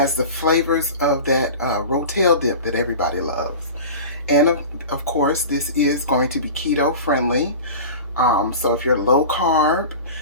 the flavors of that Rotel Dip that everybody loves. And of course, this is going to be keto friendly. So if you're low carb,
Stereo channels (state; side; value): inverted; both; correlation -0.34